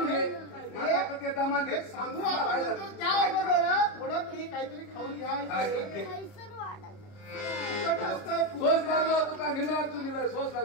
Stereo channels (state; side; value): late; right; 30 ms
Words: घे ते दमान घे सांगू आपण त्या अगोदर थोडं तरी काहीतरी खाऊन घ्या. सोस लागलो तुका निमरात तुम्ही सोस